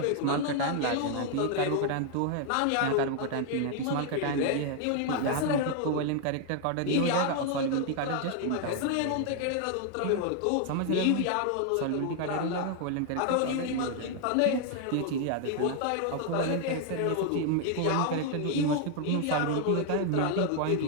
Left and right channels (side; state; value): both; different; correlation 0.00